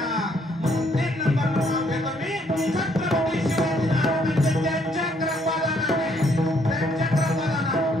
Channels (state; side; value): normal; both; correlation 0.68